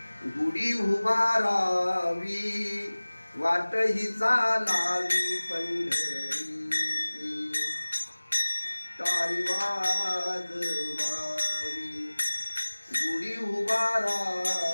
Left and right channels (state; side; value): inverted; both; correlation -1.00